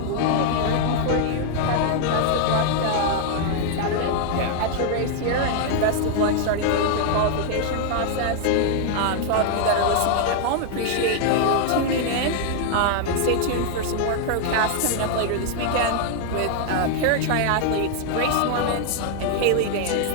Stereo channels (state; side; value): different; both; correlation 0.00